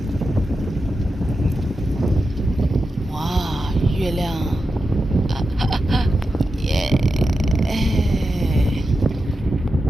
月亮，耶！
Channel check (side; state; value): both; normal; correlation 0.89